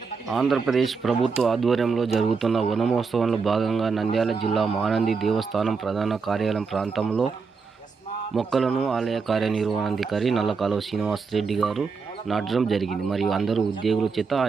ఆంధ్రప్రదేశ్ ప్రభుత్వ ఆధ్వర్యంలో జరుగుతున్న వనమహోత్సవంలో భాగంగా నంద్యాల జిల్లా మానంది దేవస్థానం ప్రధాన కార్యాలయం ప్రాంతంలో మొక్కలను ఆలయ కార్యనిర్వహణాధికారి నల్లకాలువ శ్రీనివాస్ రెడ్డి గారు నాటడం జరిగింది. మరియు అందరూ ఉద్యోగుల చేత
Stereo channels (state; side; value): quieter; left; 5.1 dB